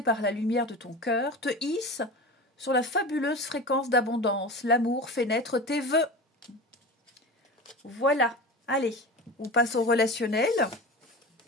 par la lumière de ton cœur, te hissent sur la fabuleuse fréquence d'abondance. L'amour fait naître tes vœux. Voilà. Allez, on passe au relationnel.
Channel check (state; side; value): normal; both; correlation 0.30